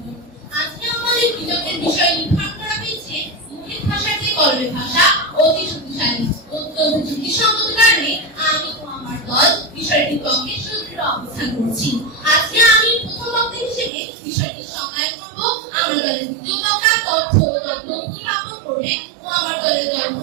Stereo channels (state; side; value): drops out; left; at 13.9 s